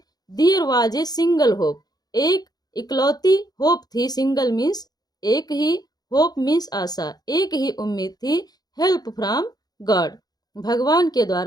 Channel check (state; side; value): late; right; 0.19 ms